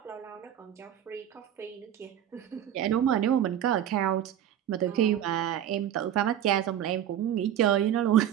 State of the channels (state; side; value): quieter; left; 10.5 dB